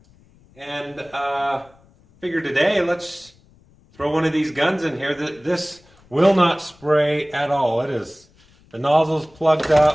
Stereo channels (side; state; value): left; noise; rumble, 29 dB below the sound